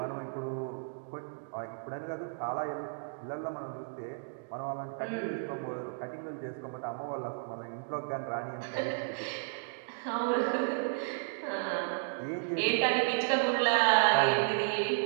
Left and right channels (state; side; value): silent; left; digital silence